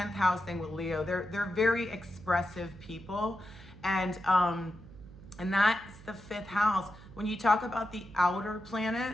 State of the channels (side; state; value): right; noise; hum, 19 dB below the sound